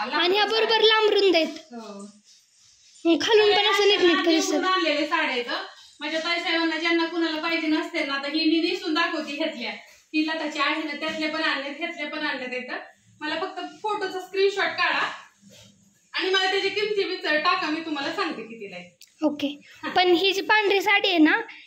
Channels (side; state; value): both; identical; correlation 1.00